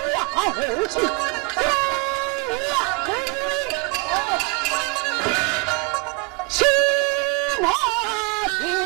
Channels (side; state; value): left; quieter; 31.2 dB